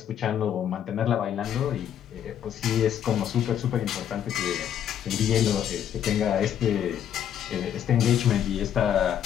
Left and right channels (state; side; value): quieter; right; 9.7 dB